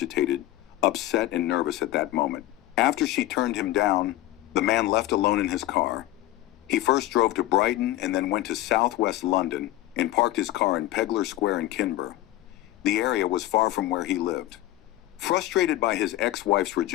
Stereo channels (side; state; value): right; quieter; 15.5 dB